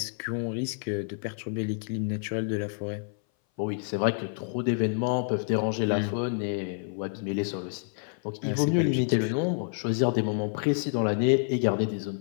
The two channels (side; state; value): right; silent; 58 dB below the other